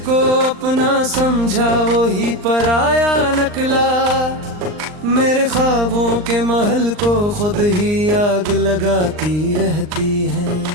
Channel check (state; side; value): late; left; 39 ms